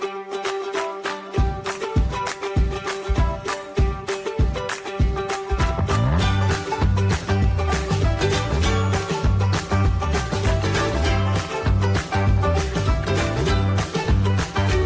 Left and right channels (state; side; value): identical; both; correlation 1.00